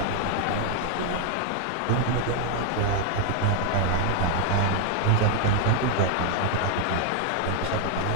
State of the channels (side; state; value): both; different; correlation 0.00